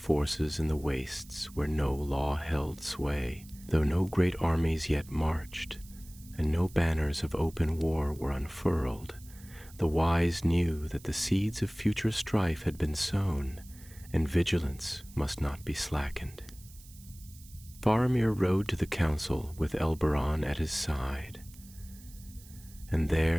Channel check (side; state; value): right; noise; hiss, 22 dB below the sound